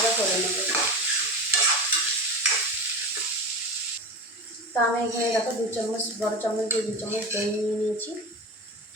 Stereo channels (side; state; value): both; normal; correlation 0.27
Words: করে নেবো। তো আমি এখানে দেখো 2 চামচ, বড় চামচ দিয়ে 2 চামচ দই নিয়ে নিয়েছি।